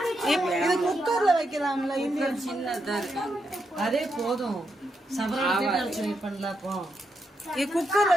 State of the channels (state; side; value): normal; both; correlation 0.83